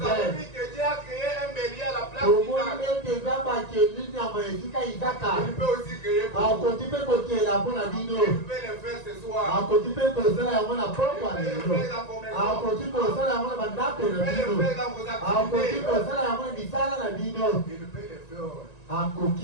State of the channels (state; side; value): late; right; 1.9 ms